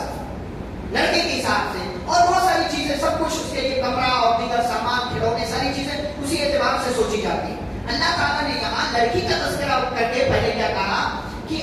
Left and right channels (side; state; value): both; identical; correlation 1.00